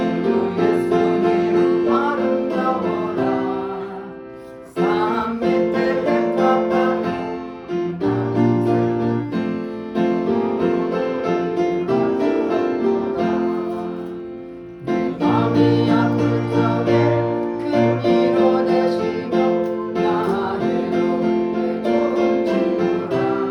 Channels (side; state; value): both; identical; correlation 1.00